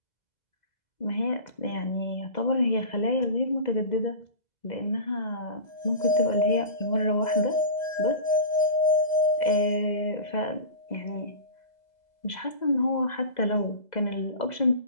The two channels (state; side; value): late; right; 2.0 ms